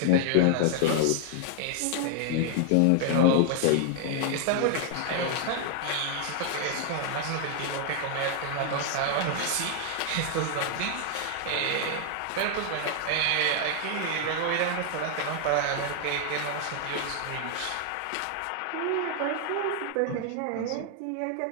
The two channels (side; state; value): both; different; correlation 0.00